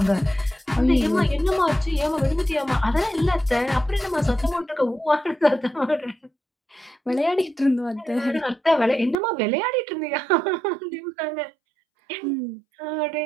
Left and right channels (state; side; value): drops out; left; at 9.2 s